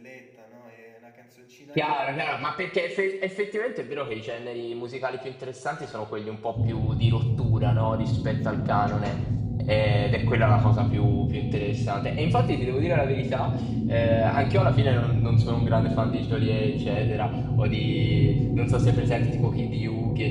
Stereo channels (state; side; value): identical; both; correlation 1.00